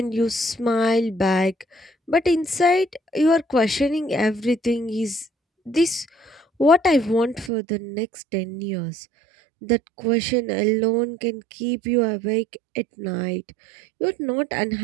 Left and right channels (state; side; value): drops out; left; at 7.5 s